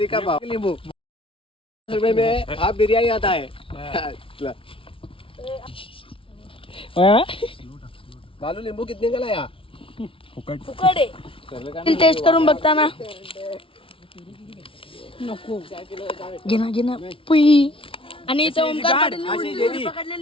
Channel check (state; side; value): late; right; 0.26 ms